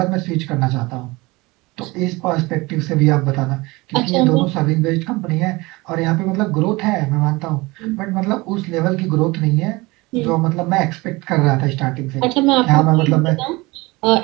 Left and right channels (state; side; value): quieter; left; 22.9 dB